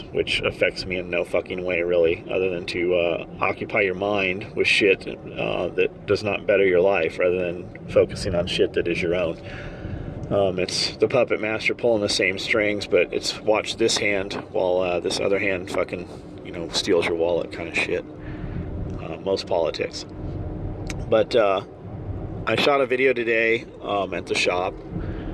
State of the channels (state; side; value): identical; both; correlation 1.00